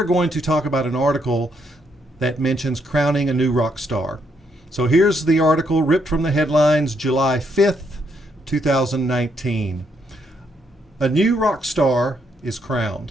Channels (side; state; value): both; normal; correlation 0.75